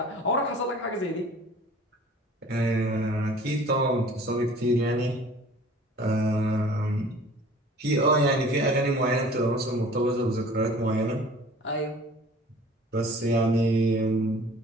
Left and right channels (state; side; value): normal; both; correlation 0.48